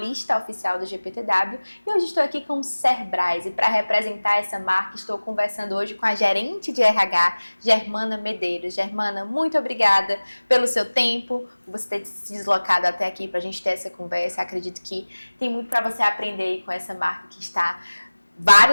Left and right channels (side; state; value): both; inverted; correlation -1.00